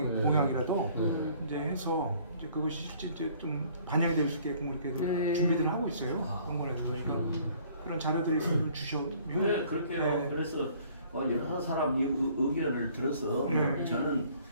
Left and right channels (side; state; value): both; inverted; correlation -0.57